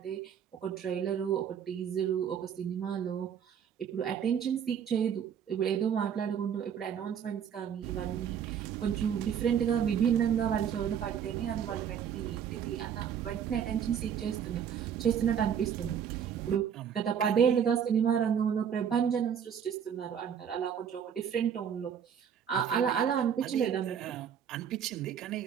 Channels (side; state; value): left; quieter; 8.2 dB